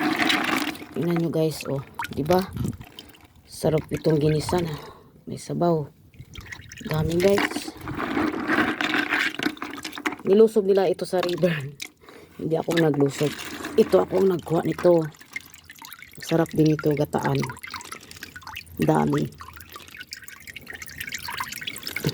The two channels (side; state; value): both; identical; correlation 1.00